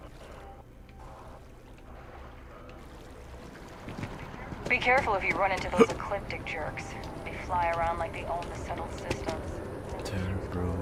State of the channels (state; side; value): identical; both; correlation 1.00